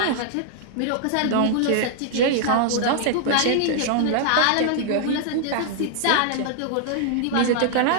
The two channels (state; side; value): different; both; correlation -0.01